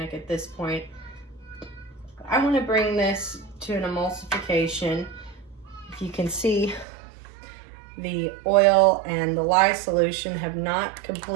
at this point. I want to bring this to an emulsification. If you can see, the oil and the lye solution have not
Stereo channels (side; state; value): left; drops out; at 6.9 s